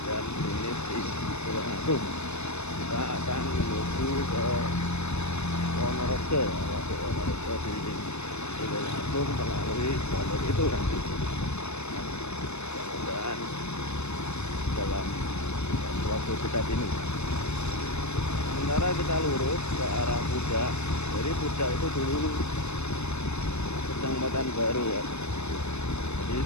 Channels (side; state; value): right; late; 0.81 ms